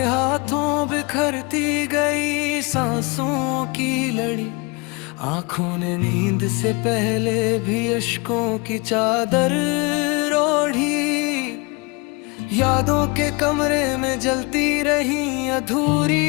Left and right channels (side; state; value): right; quieter; 28.7 dB